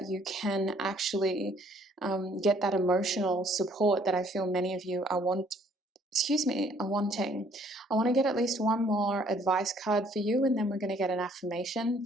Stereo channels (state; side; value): normal; both; correlation 0.62